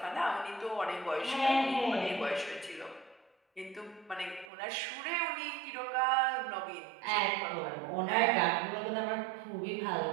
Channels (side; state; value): left; drops out; at 4.5 s